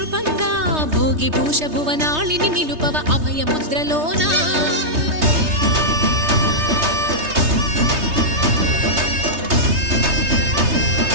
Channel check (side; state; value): left; late; 3.3 ms